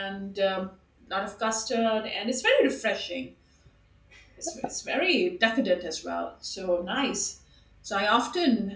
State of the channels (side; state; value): both; identical; correlation 1.00